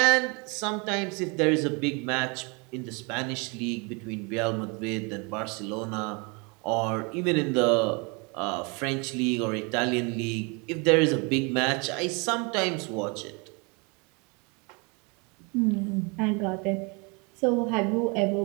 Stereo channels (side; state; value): left; quieter; 31.0 dB